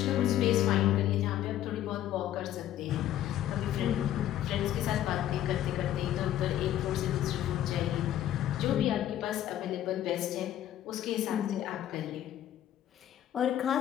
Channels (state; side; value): quieter; right; 12.0 dB